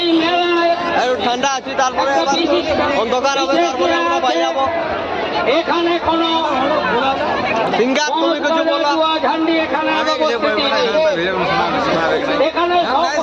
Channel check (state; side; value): identical; both; correlation 1.00